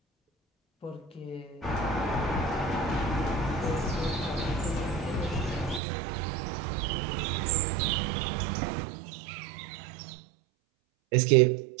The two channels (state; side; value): drops out; left; at 5.8 s